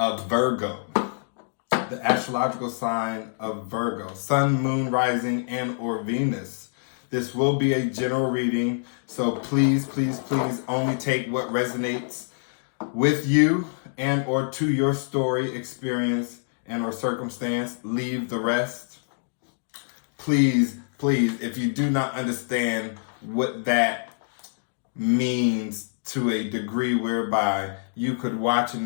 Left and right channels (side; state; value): right; silent; digital silence